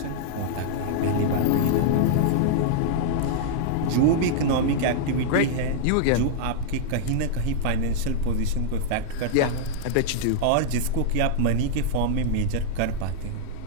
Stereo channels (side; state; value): both; different; correlation -0.01